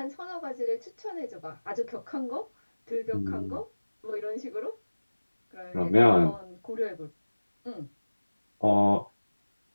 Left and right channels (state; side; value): inverted; both; correlation -1.00